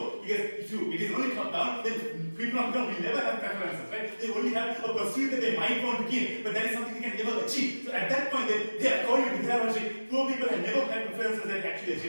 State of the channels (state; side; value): inverted; both; correlation -1.00